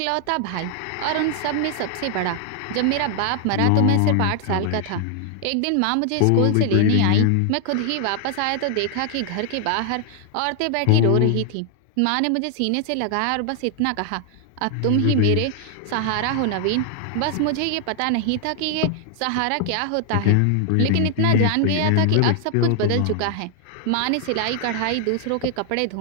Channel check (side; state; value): both; different; correlation 0.00